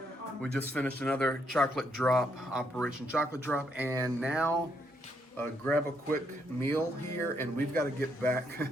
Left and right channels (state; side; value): normal; both; correlation 0.75